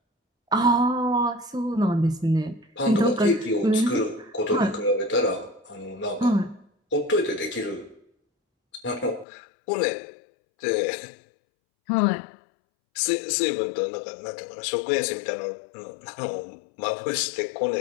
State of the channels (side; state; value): right; drops out; at 9.2 s